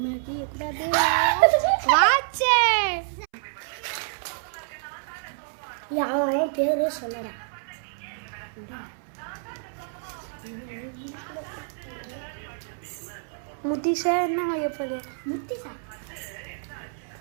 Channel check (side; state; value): left; silent; 60 dB below the other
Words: வாட்ச் யாரும் பேரு சொல்லடா முத்திஷா என்ன எப்போது முத்திஷா